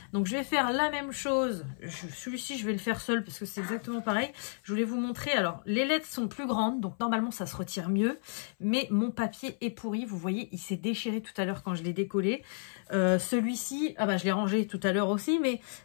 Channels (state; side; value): silent; right; 57 dB below the other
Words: Donc je vais faire la même chose. Celui-ci, je vais le faire seul parce que c'est exactement pareil. Je voulais vous montrer. Alors, les lettres sont plus grandes. Donc normalement, ça se retire mieux. Mais mon papier est pourri. Vous voyez, il s'est déchiré tout à l'heure quand je l'ai décollé. Celui-ci, ah bah je l'ai rangé tout à l'heure aussi. Mais